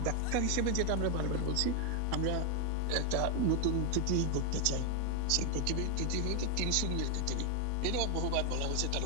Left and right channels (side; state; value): both; different; correlation 0.01